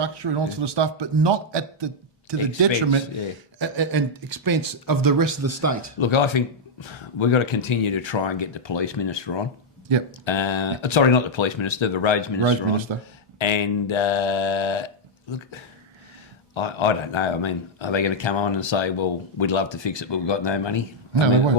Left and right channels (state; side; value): normal; both; correlation -0.03